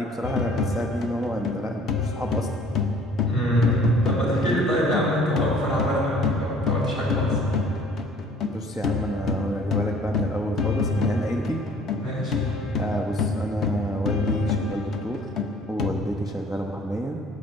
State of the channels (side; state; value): both; normal; correlation 0.54